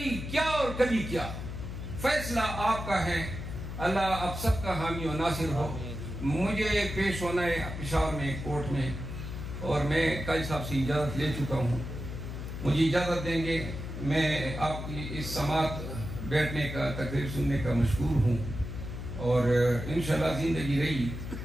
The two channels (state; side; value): noise; left; hum, 7 dB below the sound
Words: کیا اور کبھی کیا. فیصلہ آپ کا ہے, اللہ آپ سب کا حامی و ناصر ہو. مجھے پیش ہونا ہے پشاور میں کورٹ میں, اور میں قاضی صاحب سے اجازت لے چکا ہوں. مجھے اجازت دیں گے, میں آپ کی اس سماعت بیٹھنے کا, تقریر سننے کا مشکور ہوں, اور انشاءاللہ زندگی رہی